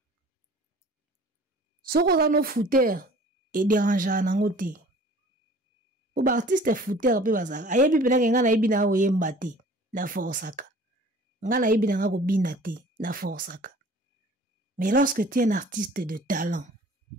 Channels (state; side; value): normal; both; correlation 0.48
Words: Soko zano fouteur et dérangeant nango te. ba artiste fouteur pe bazaka ayebi pena ke nga na yebi na oyemba te na forsaka nga na yebi na nga ko bina te na forsaka. Mais lorsque tu es un artiste de talent